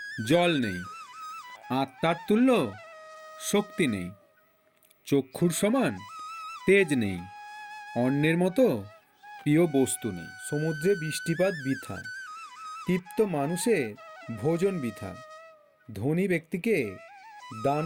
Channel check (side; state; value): both; identical; correlation 1.00